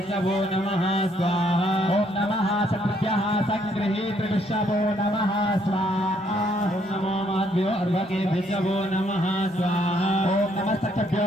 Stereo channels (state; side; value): normal; both; correlation 0.69